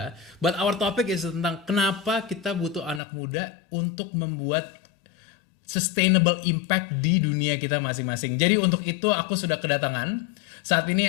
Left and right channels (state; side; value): drops out; right; at 3.0 s